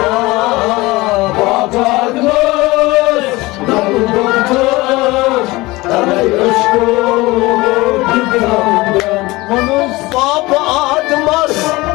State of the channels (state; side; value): quieter; right; 21.1 dB